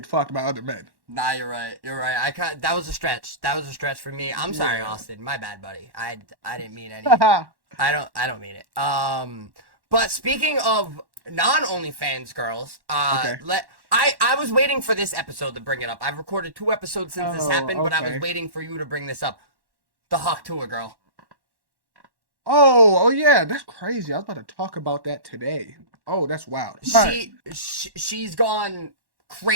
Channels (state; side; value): late; left; 1.1 ms